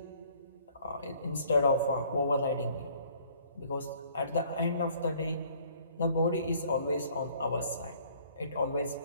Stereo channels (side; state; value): both; inverted; correlation -0.58